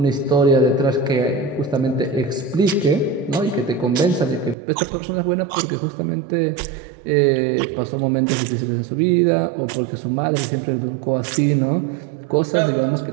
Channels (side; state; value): left; drops out; at 4.5 s